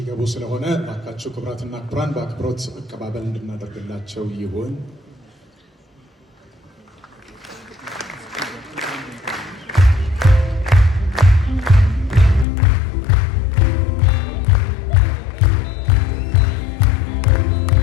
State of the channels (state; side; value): drops out; right; at 12.5 s